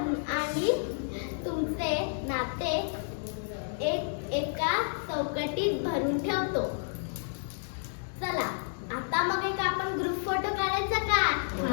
तुमचे नाते एका चौकटीत भरून ठेवतो. चला आता मग एक आपण ग्रुप फोटो काढायचा का?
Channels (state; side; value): silent; right; digital silence